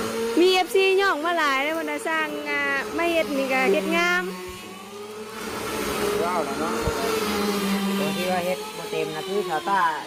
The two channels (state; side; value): identical; both; correlation 1.00